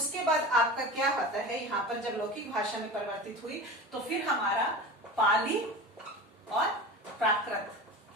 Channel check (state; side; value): normal; both; correlation 0.31